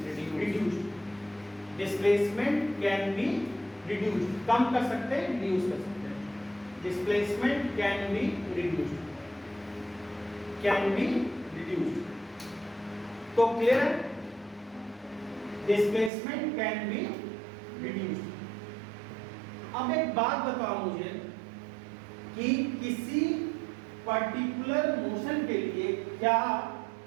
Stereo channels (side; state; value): left; drops out; at 16.1 s